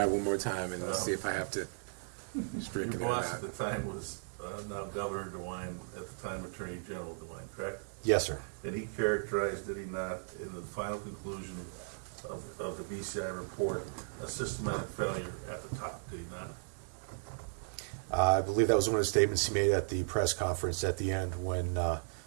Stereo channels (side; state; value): left; silent; digital silence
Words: it one more time and let's see if I have to stricken Your it or boss not. at the time was now Governor DeWine, at the time Attorney General DeWine, correct? Yes, sir. And he characterized, did he not, in the final conclusion of the BCI report, a systematic failure at the top, did he not? I believe that was one of the statements he made at the press conference at the end when